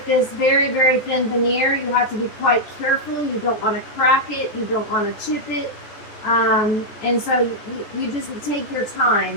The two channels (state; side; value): late; right; 14 ms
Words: this very, very thin veneer, you have to be quite careful. You don't want to crack it. You don't want to chip it. And so you just take your